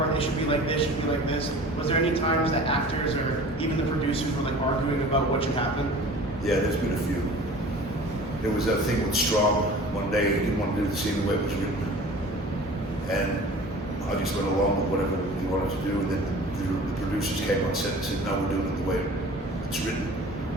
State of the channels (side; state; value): both; normal; correlation 0.43